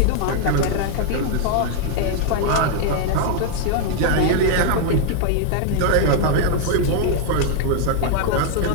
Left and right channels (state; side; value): different; both; correlation 0.00